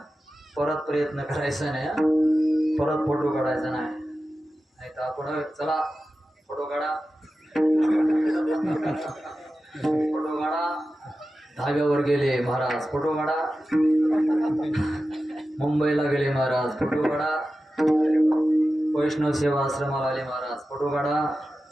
परत प्रयत्न करायचा नाही, परत फोटो काढायचा नाही तर आपण चला फोटो काढा फोटो काढा. धाब्यावर गेले महाराज, फोटो काढा. मुंबईला गेले महाराज, फोटो काढा. वैष्णव सेवा आश्रमाला आले महाराज, फोटो काढा.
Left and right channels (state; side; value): normal; both; correlation 0.93